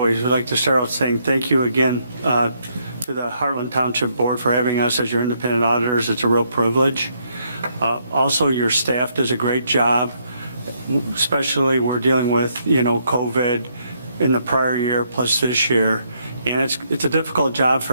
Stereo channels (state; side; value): inverted; both; correlation -0.73